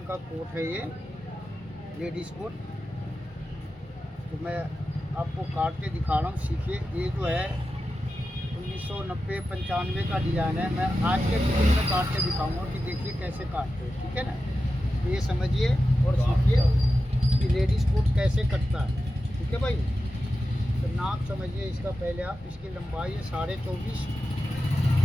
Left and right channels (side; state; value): both; normal; correlation 0.92